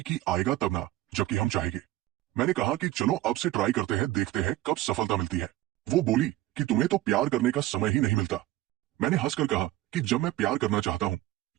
कि आएगा तब ना, जबकि हम चाहेंगे। मैंने कहा कि चलो अब से ट्राई करते हैं, देखते हैं कब सफलता मिलती है। वो बोली कि तुम्हें तो प्यार करने का समय ही नहीं मिलता। मैंने हंसकर कहा कि जब मैं प्यार करना चाहता हूं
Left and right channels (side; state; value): left; quieter; 15.8 dB